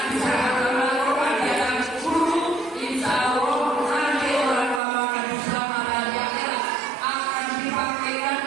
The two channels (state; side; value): drops out; left; at 4.8 s